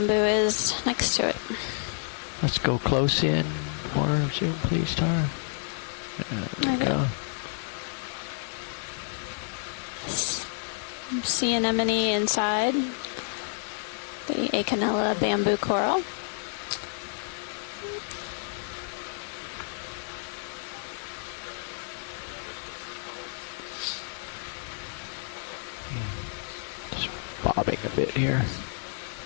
is next to it. Let's go close in. More zoom, please, Tara. There we go. Sea anemone inside the Okeanos bamboo coral. Just bobbing a bit here.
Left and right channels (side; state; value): right; silent; 58 dB below the other